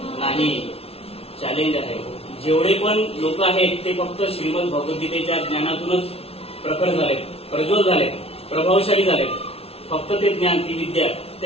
नाही. चॅलेंज आहे. जेवढे पण लोक आहेत ते फक्त श्रीमद भगवद्गीतेच्या ज्ञानातूनच प्रखर झाले, प्रज्वल झाले, प्रभावशाली झाले. फक्त ते ज्ञान, ती विद्या,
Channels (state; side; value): late; right; 0.29 ms